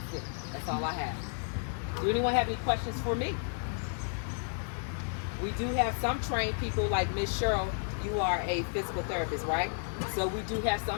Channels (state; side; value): silent; right; 56 dB below the other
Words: it. That's all I have. Do anyone have any questions for me? We do have some trained people, like Miss Cheryl. You are a physical therapist, right? So we do have